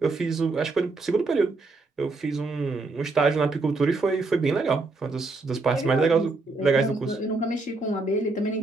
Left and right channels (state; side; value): quieter; left; 3.5 dB